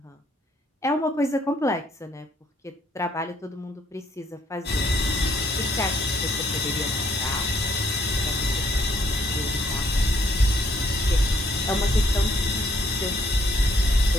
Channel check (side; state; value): both; normal; correlation 0.68